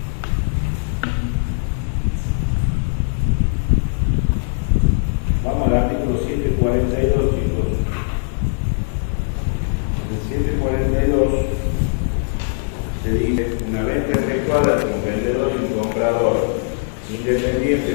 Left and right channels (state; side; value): silent; right; digital silence